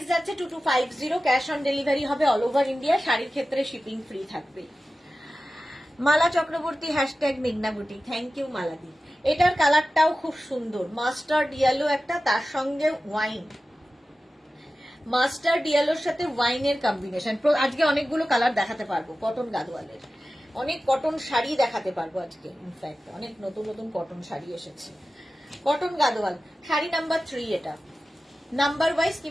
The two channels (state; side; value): normal; both; correlation 0.95